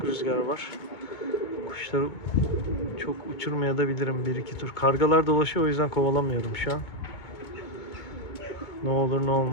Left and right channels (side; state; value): right; late; 2.2 ms